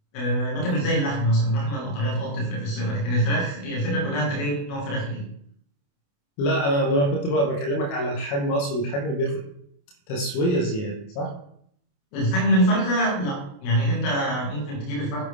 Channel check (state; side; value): late; right; 28 ms